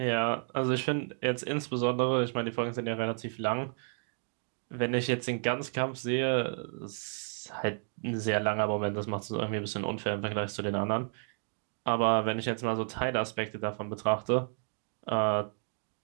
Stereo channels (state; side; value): silent; left; 57 dB below the other